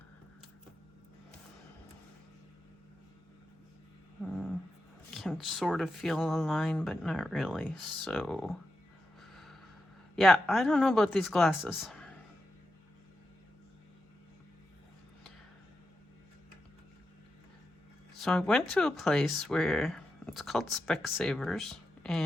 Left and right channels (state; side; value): normal; both; correlation 0.89